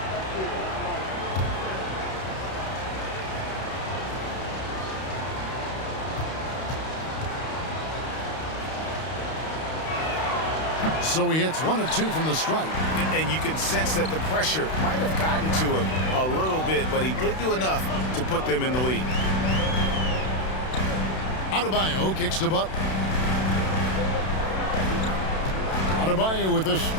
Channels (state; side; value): late; right; 32 ms